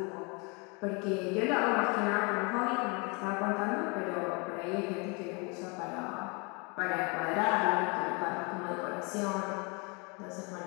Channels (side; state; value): right; quieter; 31.0 dB